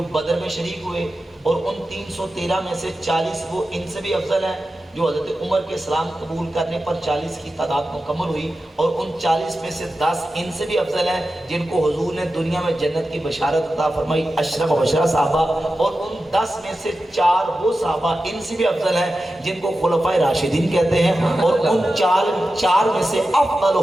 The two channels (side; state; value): both; normal; correlation 0.92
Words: بدر میں شریک ہوئے, اور ان 313 میں سے 40 وہ ان سے بھی افضل ہیں جو حضرت عمر کے اسلام قبول کرنے پر 40 کی تعداد مکمل ہوئی، اور ان 40 میں سے 10 ان سے بھی افضل ہیں جن کو حضور نے دنیا میں جنت کی بشارت عطا فرمائی، اشرف و بشرہ صحابہ، اور ان 10 میں سے 4 وہ صحابہ ان سے بھی افضل ہیں جن کو خلفائے راشدین کہتے ہیں، اور ان 4 میں سے